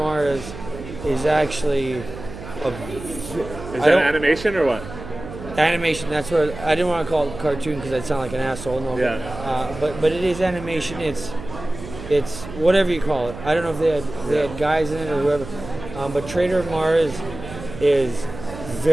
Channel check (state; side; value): noise; right; hum, 12 dB below the sound